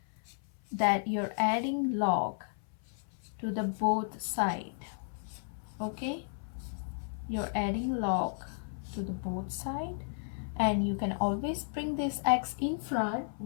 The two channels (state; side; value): silent; right; 55 dB below the other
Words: that you're adding log to the both side. Okay? You're adding log to the both side, and you can always bring this x in front.